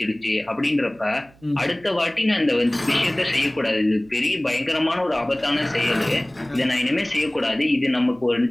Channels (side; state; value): right; noise; hum, 28 dB below the sound